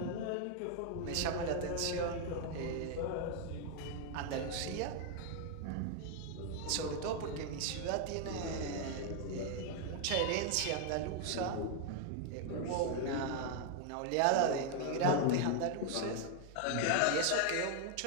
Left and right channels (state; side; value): different; both; correlation 0.00